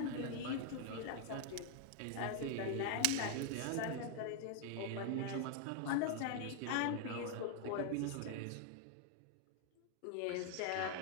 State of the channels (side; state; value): both; different; correlation 0.00